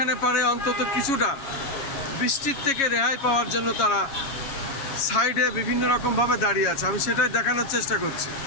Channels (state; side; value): late; right; 7.3 ms